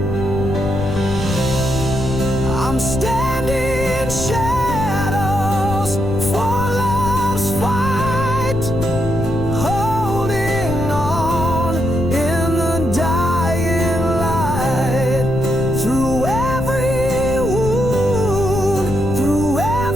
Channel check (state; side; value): noise; left; rumble, 6 dB below the sound